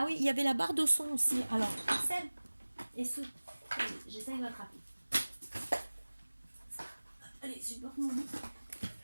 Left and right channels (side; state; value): both; inverted; correlation -1.00